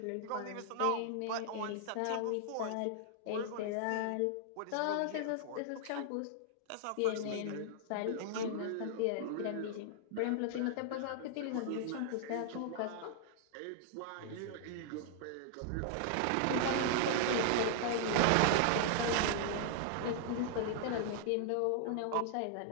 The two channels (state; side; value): different; both; correlation 0.00